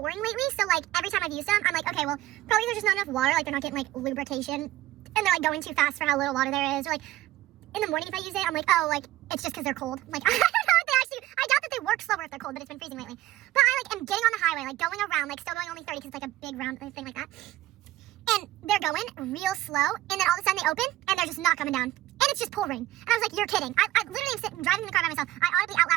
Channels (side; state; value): left; quieter; 15.1 dB